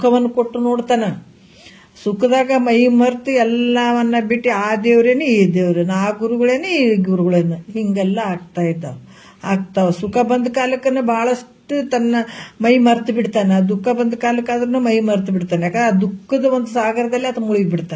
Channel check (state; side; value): identical; both; correlation 1.00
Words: ಕೊಟ್ಟು ನೋಡ್ತಾನ. ಸುಖದಾಗ ಮೈ ಮರ್ತು ಎಲ್ಲವನ್ನ ಬಿಟ್ಟು ಆ ದೇವ್ರೇನೆ ಈ ದೇವ್ರೇನೆ, ಆ ಗುರುಗಳೇನೆ ಈ ಗುರುಗಳೇನೆ ಹಿಂಗೆಲ್ಲ ಆಗ್ತಾವ. ಸುಖ ಬಂದ ಕಾಲಕ್ಕನ ಬಹಳಷ್ಟು ತನ್ನ ಮೈ ಮರ್ತು ಬಿಡ್ತಾನೆ. ದುಃಖ ಬಂದ ಕಾಲಕ್ಕಾದ್ರೂ ಮೈ ಮರ್ತು ಬಿಡ್ತಾನೆ. ಯಾಕಂದ್ರೆ ಆ ದುಃಖದ ಒಂದು ಸಾಗರದಲ್ಲಿ ಆತ ಮುಳುಗಿ